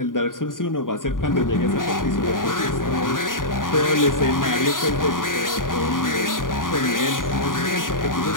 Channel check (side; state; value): right; late; 0.89 ms